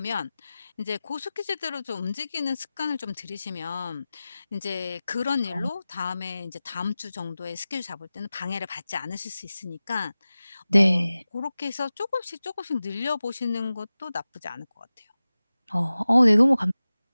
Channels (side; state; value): both; inverted; correlation -0.96